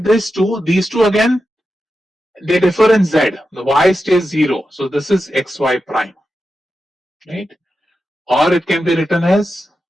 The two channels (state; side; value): normal; both; correlation 0.90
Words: these two again, they differ in z. The y stays 0, so this is xy prime, right? Or it can be written as